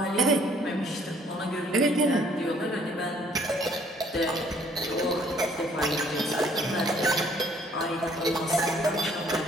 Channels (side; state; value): both; normal; correlation 0.61